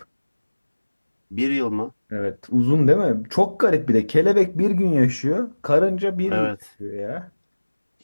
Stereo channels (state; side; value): inverted; both; correlation -1.00